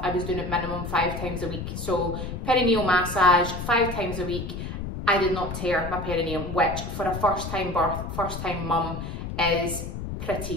I was doing it minimum 5 times a week. So perineal massage 5 times a week. I did not tear my perineum, which for a first time birth, first time mum, is pretty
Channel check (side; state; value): left; noise; rumble, 6 dB below the sound